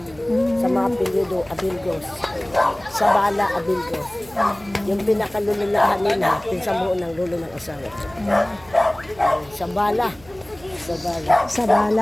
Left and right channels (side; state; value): right; noise; hum, 23 dB below the sound